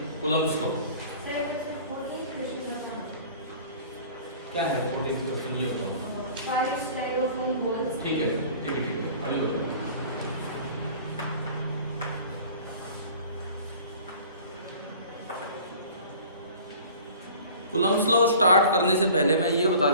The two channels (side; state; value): both; inverted; correlation -0.46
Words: कूलम्ब्स लॉ। क्या है 14 क्वेश्चन ये होता है? 5 स्टाइरोफोम बॉल्स। ठीक है ठीक है ठीक है, अभी बताओ। कूलम्ब्स लॉ स्टार्ट करने से पहले मैं ये बता